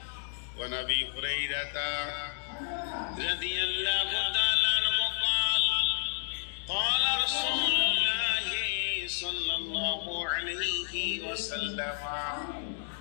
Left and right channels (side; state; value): right; silent; digital silence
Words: ওয়ানাবি হুরাইরাতা রাদিয়াল্লাহু তাআলা আনহু قال قال رسول الله صلى الله عليه وسلم